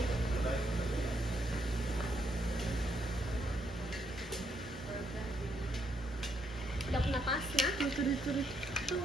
Dap napas na?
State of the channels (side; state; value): both; normal; correlation 0.75